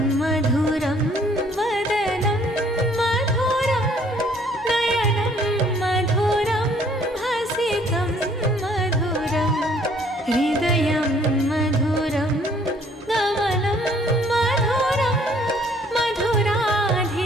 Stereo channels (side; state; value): both; normal; correlation 0.61